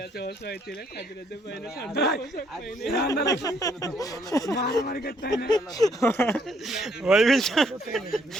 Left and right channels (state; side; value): normal; both; correlation 0.68